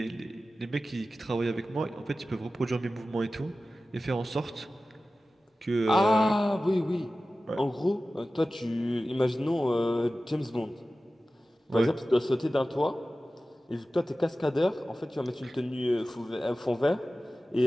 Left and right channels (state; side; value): normal; both; correlation 0.95